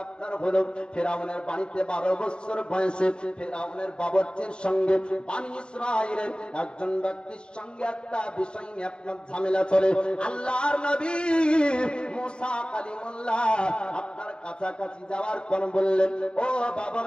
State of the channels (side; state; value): right; late; 0.050 ms